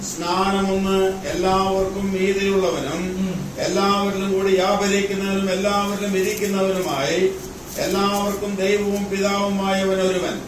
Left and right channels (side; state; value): both; identical; correlation 1.00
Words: സ്നാനമൊന്ന്, എല്ലാവർക്കും മീതിയുള്ളവനും എല്ലാവരിലും കൂടി വ്യാപരിക്കുന്നവനും എല്ലാവരിലും ഇരിക്കുന്നവനുമായി എല്ലാവർക്കും ദൈവവും പിതാവുമായവൻ ഒരുവൻ.